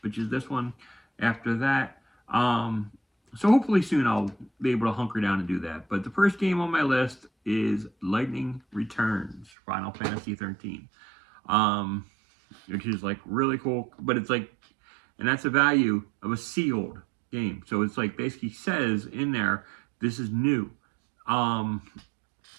which is this one, after that. So hopefully soon I'll be able to hunker down and do that. But the first game on my list is Lightning Returns, Final Fantasy 13. Which is like really cool, but it's like, and that's the value of a sealed game. So it's like basically says in there, this is new.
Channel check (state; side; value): drops out; left; at 9.5 s